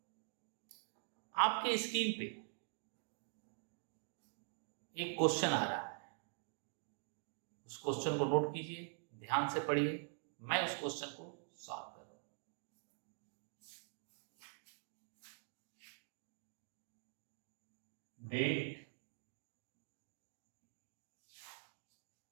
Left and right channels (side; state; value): left; silent; digital silence